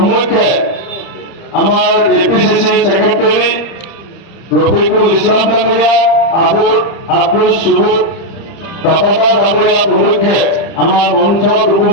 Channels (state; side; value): late; right; 30 ms